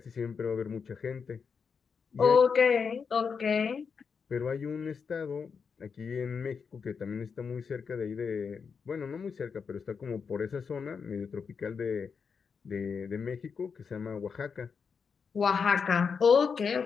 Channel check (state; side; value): quieter; right; 5.9 dB